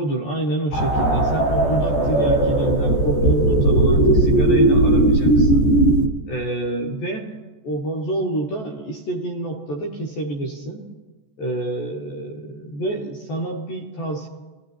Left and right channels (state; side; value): late; right; 14 ms